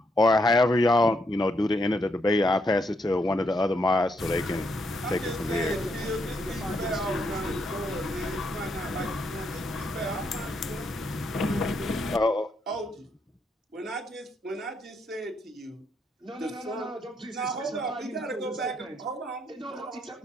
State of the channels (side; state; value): both; normal; correlation 0.77